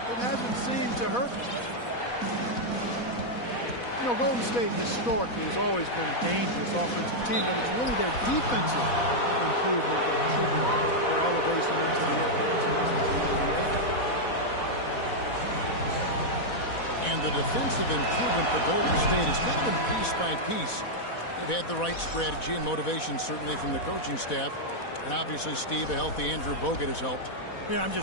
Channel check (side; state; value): right; late; 4.1 ms